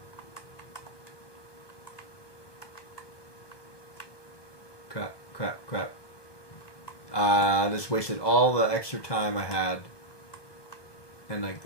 Crap. I just wasted all the extra time I had. And like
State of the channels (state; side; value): late; right; 1.2 ms